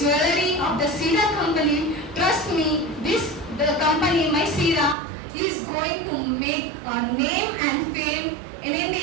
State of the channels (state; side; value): drops out; left; at 5.0 s